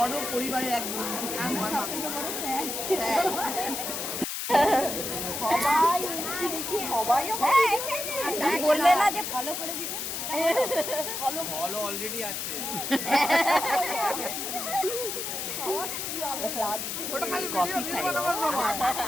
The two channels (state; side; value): noise; left; hiss, 4 dB below the sound